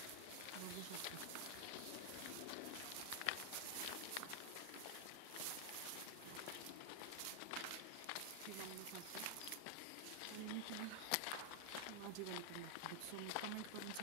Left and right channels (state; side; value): different; both; correlation 0.00